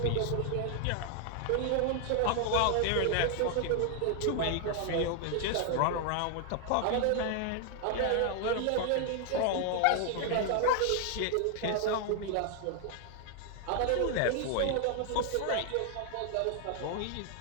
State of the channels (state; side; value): different; both; correlation 0.00